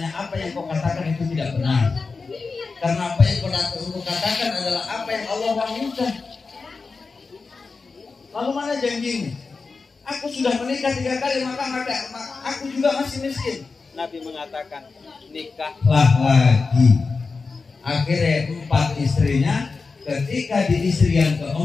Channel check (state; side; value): quieter; right; 4.4 dB